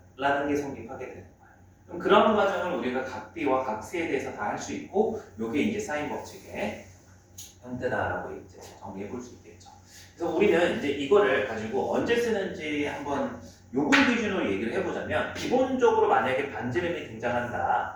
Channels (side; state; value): both; identical; correlation 1.00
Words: 게 성립하게 되는 거예요. 그럼 그런 과정을 우리가 각 B와 각 C에 대해서 다 할 수 있고 요게 이제 사인 법칙의 형태다라고 이제 정리해 볼 수 있겠죠. 그래서 우리는 이제 이거를 가지고 언제 쓰는지 한번 요걸 기준으로 얘기를 해보자면 기본적으로 만약에 반지름이